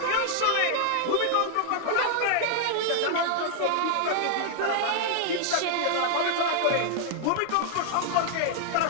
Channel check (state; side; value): different; both; correlation 0.00